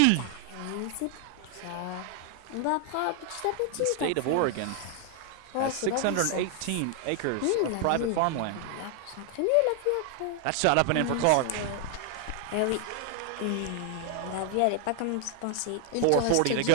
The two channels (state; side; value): different; both; correlation 0.00